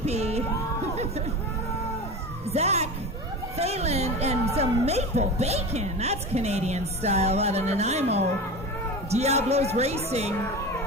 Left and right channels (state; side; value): normal; both; correlation 0.29